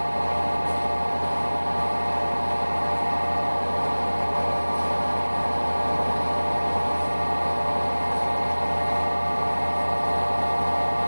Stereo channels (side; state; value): both; inverted; correlation -1.00